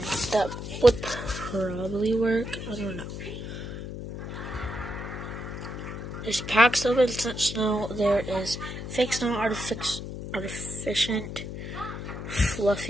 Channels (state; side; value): noise; left; hum, 7 dB below the sound